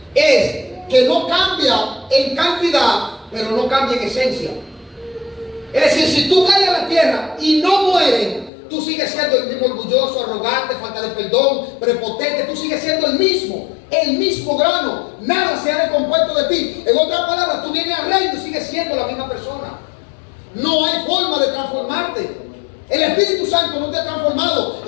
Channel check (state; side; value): drops out; right; at 8.5 s